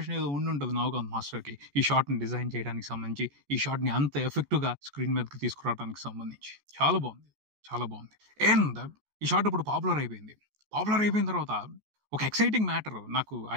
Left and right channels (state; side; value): late; left; 14 ms